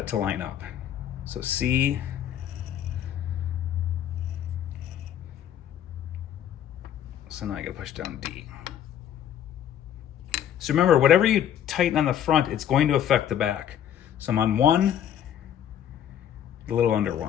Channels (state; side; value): quieter; right; 10.2 dB